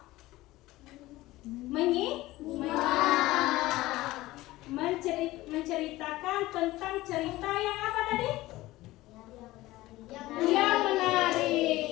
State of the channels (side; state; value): right; quieter; 17.9 dB